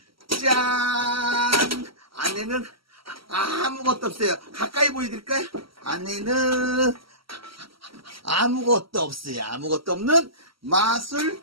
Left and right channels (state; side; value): late; left; 0.75 ms